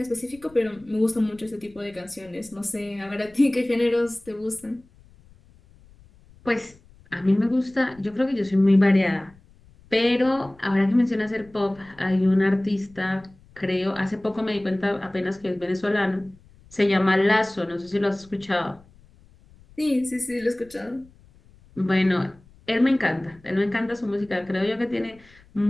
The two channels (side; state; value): left; noise; rumble, 27 dB below the sound